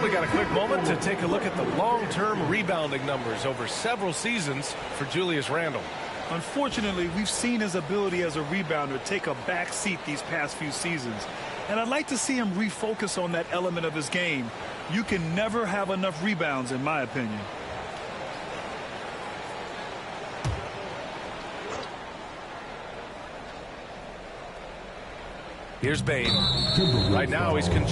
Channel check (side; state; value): both; identical; correlation 1.00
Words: We got a quick moment to take a look at the long-term rebounding numbers over several seasons for Julius Randle. Unfortunately, we've seen his ability as a rebounder take a back seat these past few seasons. And I'd like to see him refocus on that element of his game. You can never have enough rebounds, in my opinion. Here's Bain. Right now he's